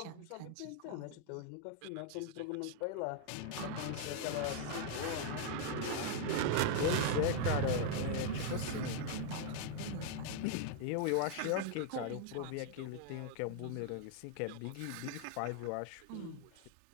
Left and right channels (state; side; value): different; both; correlation 0.00